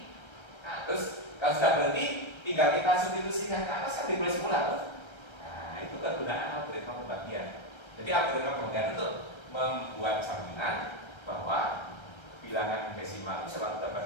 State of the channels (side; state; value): right; late; 1.3 ms